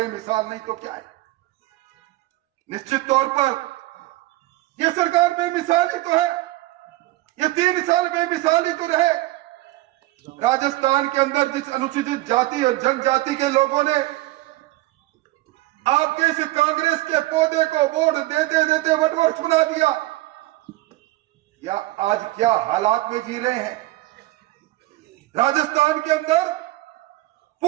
नहीं तो क्या है। निश्चित तौर पर यह सरकार बेमिसाल ही तो है। ये 3 साल बेमिसाल ही तो रहे। राजस्थान के अंदर जिस अनुसूचित जाति और जनजाति के लोगों ने आपके इस कांग्रेस के पौधे को वोट देते देते वटवृक्ष बना दिया, या आज क्या हालात में जी रहे हैं। राजस्थान के अंदर,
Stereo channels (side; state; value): left; quieter; 18.4 dB